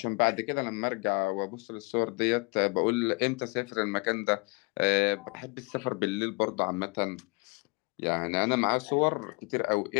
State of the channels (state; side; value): quieter; right; 28.9 dB